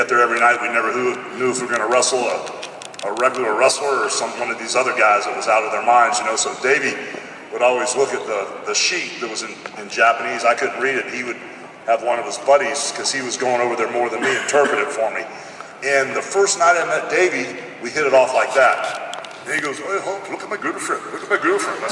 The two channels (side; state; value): both; identical; correlation 1.00